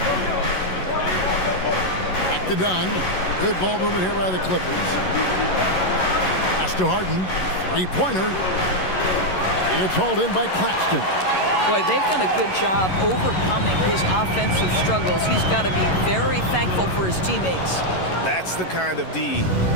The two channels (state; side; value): late; right; 11 ms